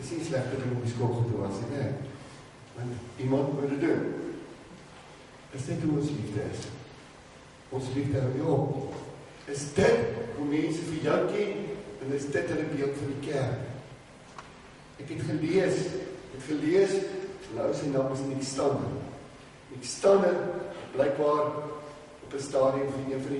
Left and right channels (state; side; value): identical; both; correlation 1.00